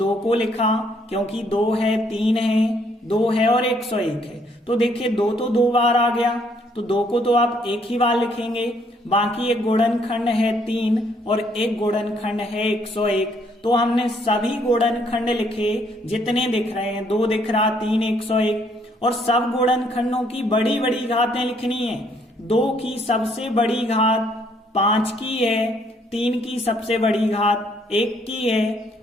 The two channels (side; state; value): both; normal; correlation 0.67